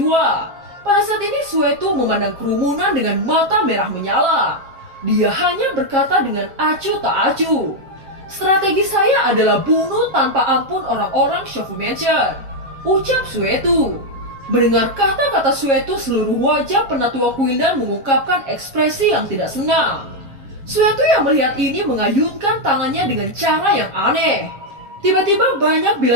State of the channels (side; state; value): left; late; 7.4 ms